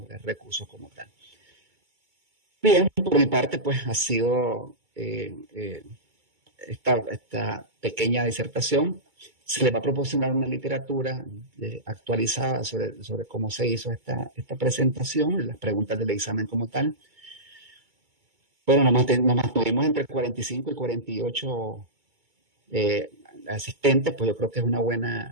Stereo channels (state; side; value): late; left; 2.2 ms